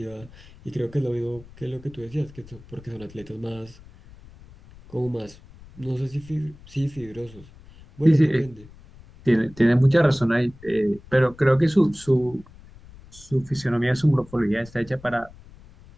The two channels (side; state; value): left; noise; rumble, 22 dB below the sound